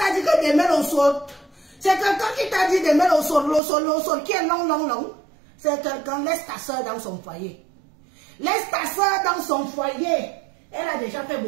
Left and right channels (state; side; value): drops out; left; at 3.6 s